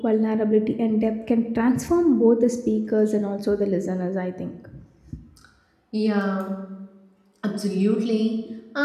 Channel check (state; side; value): identical; both; correlation 1.00